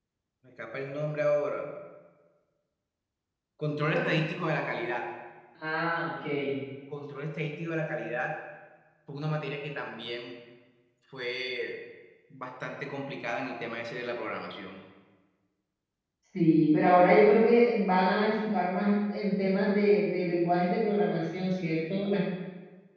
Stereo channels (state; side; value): identical; both; correlation 1.00